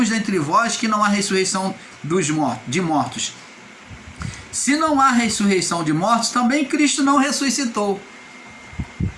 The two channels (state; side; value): identical; both; correlation 1.00